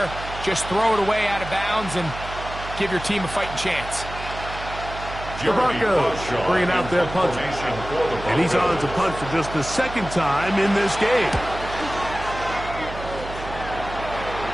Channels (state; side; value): noise; right; hum, 11 dB below the sound